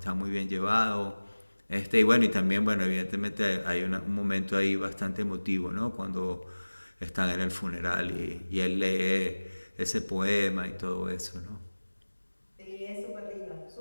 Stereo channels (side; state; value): both; inverted; correlation -1.00